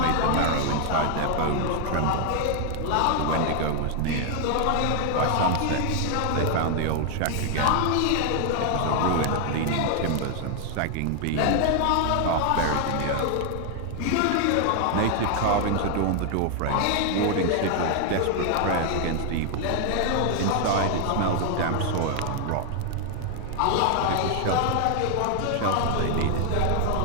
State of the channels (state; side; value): different; both; correlation 0.00